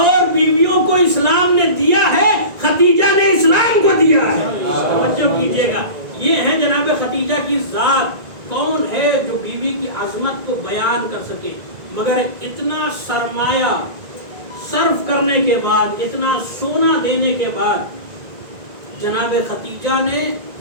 بیویوں کو اسلام نے دیا ہے، خدیجہ نے اسلام کو دیا ہے. توجہ کیجئے گا. یہ ہے جناب خدیجہ کی ذات. کون ہے جو بیوی کی عظمت کو بیان کر سکے؟ مگر اتنا سرمایہ صرف کرنے کے بعد، اتنا سونا دینے کے بعد جناب خدیجہ نے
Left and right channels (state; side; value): late; left; 1.9 ms